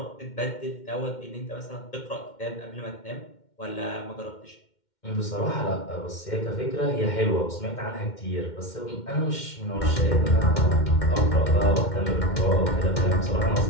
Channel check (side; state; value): right; late; 2.1 ms